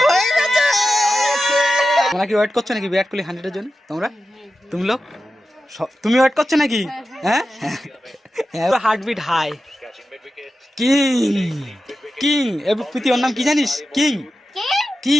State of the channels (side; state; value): both; normal; correlation 0.92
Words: হয়ে গেছে। তোমরা কি ওয়েট করছো নাকি বিরাট কোহলি 100-এর জন্য? তুমি লোক তুমি ওয়েট করছো নাকি? হ্যাঁ হার্টবিট হাই। কিং কিং প্রীতি ওর নাম কি জানিস? কিং